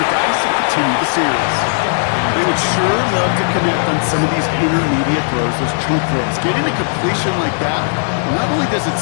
dice and continue the series. They would sure love to connect on some of these intermediate throws, those chunk throws. Getting a completion like that, not only does it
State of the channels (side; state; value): right; silent; digital silence